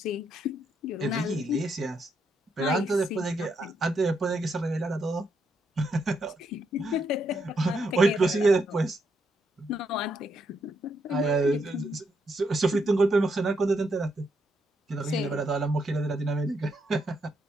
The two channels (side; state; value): both; normal; correlation 0.78